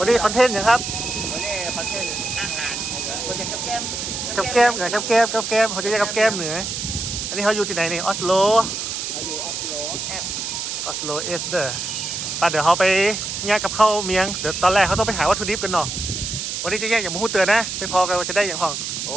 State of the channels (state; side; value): noise; right; hiss, 4 dB below the sound